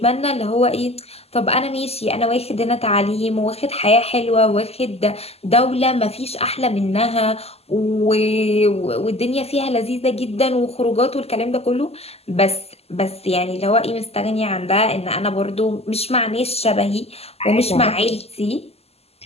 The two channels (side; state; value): right; late; 0.29 ms